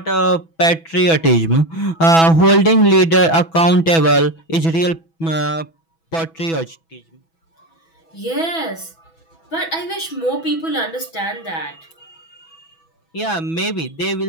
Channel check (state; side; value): late; right; 6.1 ms